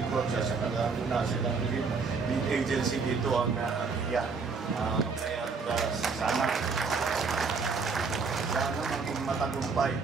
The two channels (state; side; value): quieter; left; 4.9 dB